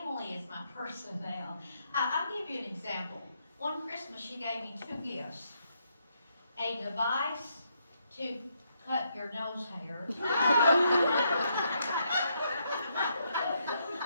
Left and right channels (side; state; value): both; inverted; correlation -0.76